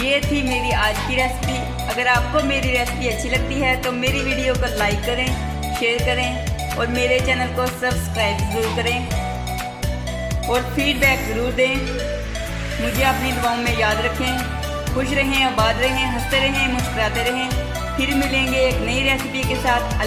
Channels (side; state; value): both; identical; correlation 1.00